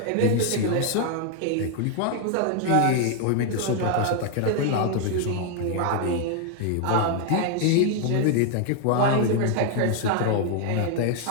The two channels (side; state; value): both; different; correlation 0.00